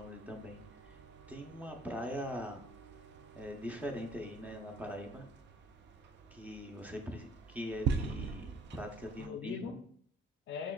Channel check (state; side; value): normal; both; correlation 0.53